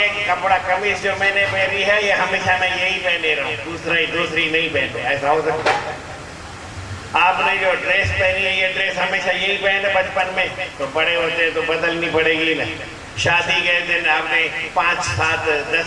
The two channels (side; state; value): both; identical; correlation 1.00